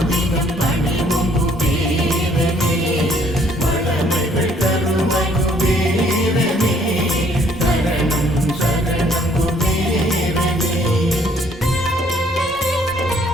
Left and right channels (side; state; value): both; normal; correlation 0.63